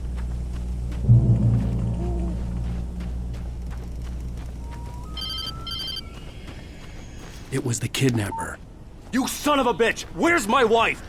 It was the kidnapper. You son of a bitch! Where's my wife?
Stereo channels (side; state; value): both; identical; correlation 1.00